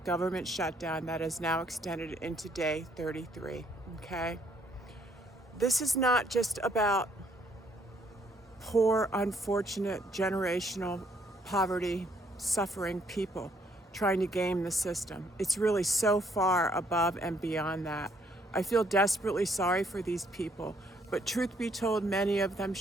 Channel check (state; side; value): normal; both; correlation 0.68